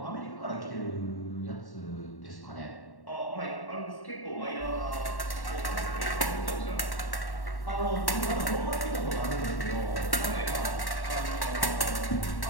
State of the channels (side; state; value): right; late; 1.1 ms